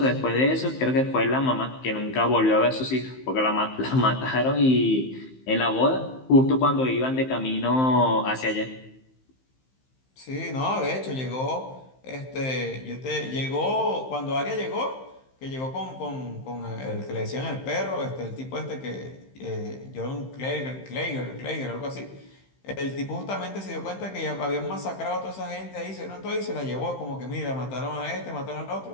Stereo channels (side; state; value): right; late; 15 ms